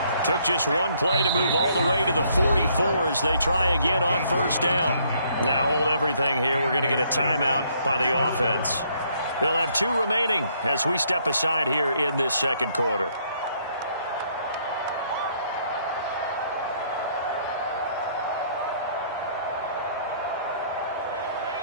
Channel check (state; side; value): inverted; both; correlation -0.67